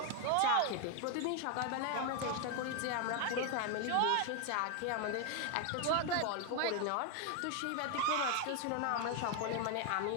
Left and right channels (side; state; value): both; different; correlation 0.01